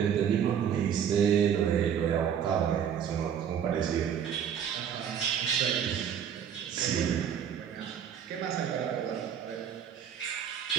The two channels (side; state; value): left; quieter; 8.5 dB